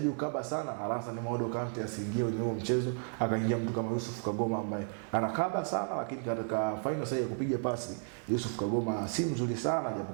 ukaba sana, Alassane Maodo Kante asiingie kwenye huo mchezo, akaingia mtu kama Yusuf Kagoma ambaye anakaba sana, lakini katika final sasa ya kupiga pasi Yusuf Kagoma si mzuri sana,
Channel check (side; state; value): left; silent; 56 dB below the other